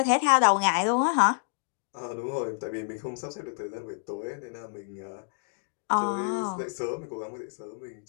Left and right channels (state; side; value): silent; right; digital silence